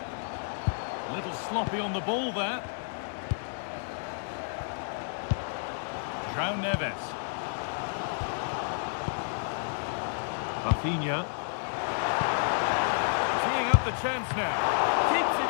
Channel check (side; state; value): right; silent; digital silence